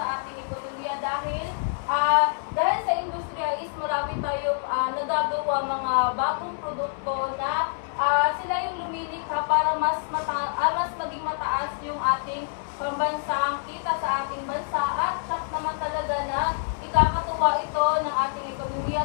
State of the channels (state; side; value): silent; right; 61 dB below the other